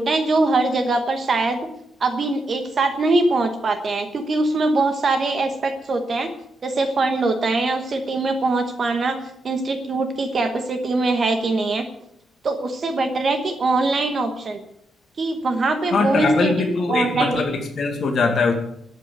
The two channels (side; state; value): both; normal; correlation 0.82